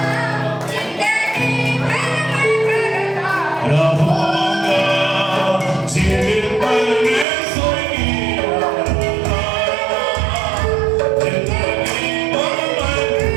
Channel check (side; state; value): left; drops out; at 7.2 s